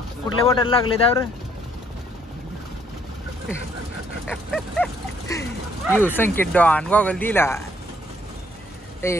कुठले बॉटल लागले त्यावर. यू संकेत डॉन गॉगल दिला.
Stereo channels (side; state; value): both; normal; correlation 0.67